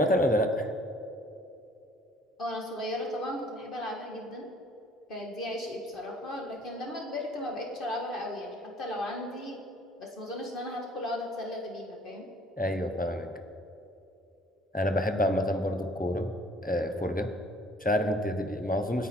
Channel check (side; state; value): both; normal; correlation 0.57